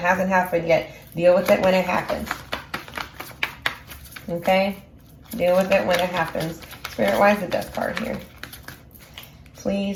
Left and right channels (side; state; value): both; identical; correlation 1.00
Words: happened yet. Deal with it when it happens. Okay? Deal with it when it happens. Spirit, why is the death card here?